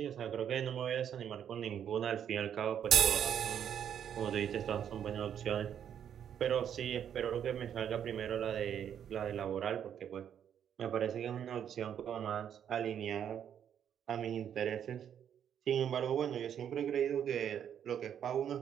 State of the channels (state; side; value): quieter; left; 9.1 dB